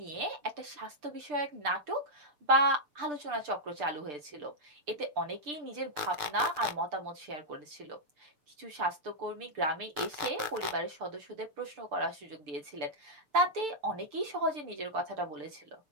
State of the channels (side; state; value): left; late; 6.8 ms